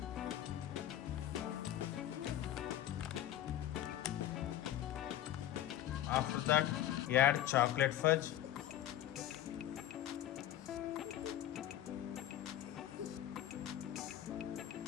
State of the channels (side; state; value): right; quieter; 12.2 dB